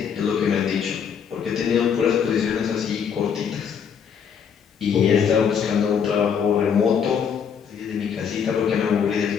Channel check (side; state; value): right; quieter; 7.3 dB